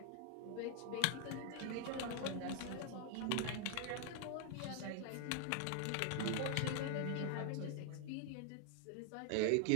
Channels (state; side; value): different; both; correlation 0.00